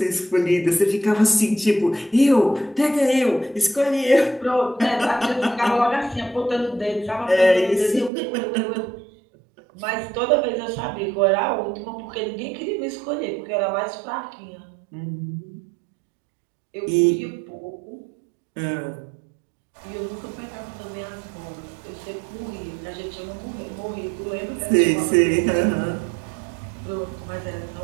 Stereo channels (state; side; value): drops out; left; at 8.1 s